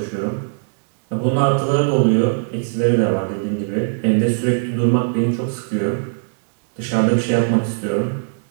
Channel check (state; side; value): silent; left; digital silence